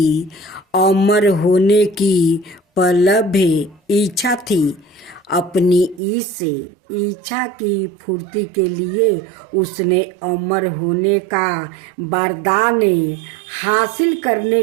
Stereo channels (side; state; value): left; drops out; at 6.0 s